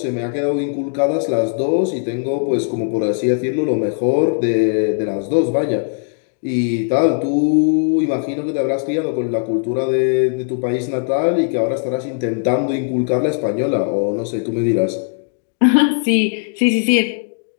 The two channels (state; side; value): silent; right; digital silence